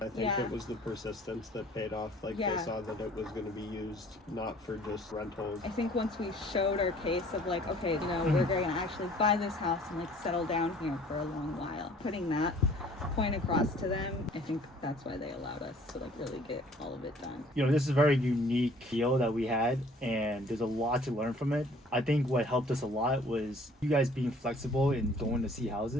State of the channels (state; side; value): normal; both; correlation 0.54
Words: I think it was the persistence that paid off. Like they saw that it was going to be used not for just rentals. I think once we showed our case of like, okay, we're going to actually buy this house and like settle down here for a long while. Putting that point across to them, I think that's why they allowed us to like really get all of it done. This is a very unique deal that we had and there's a lot to learn from it. I think what helped us a lot was you guys being flexible in going to see